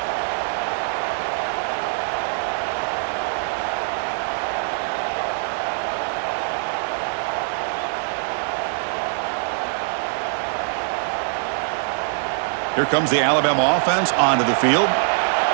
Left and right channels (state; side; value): silent; left; 63 dB below the other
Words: Here comes the Alabama offense onto the field.